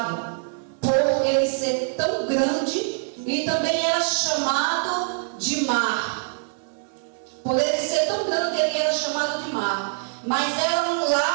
por ele ser tão grande, e também era chamado de mar. Por ele ser tão grande, ele era chamado de mar. Mas era um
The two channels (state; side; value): silent; left; digital silence